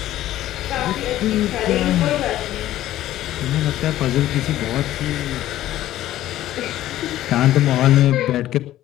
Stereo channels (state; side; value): quieter; right; 13.9 dB